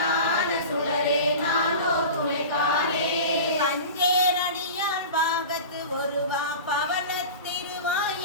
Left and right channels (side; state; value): both; inverted; correlation -0.33